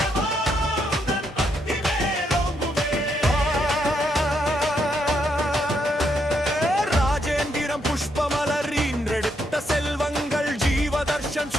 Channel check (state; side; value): normal; both; correlation 0.77